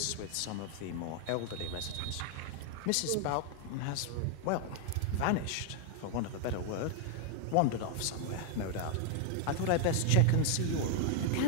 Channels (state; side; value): different; both; correlation 0.00